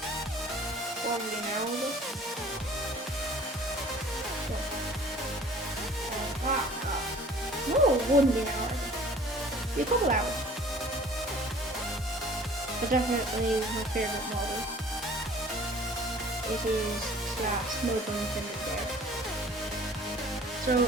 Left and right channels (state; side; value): normal; both; correlation 0.49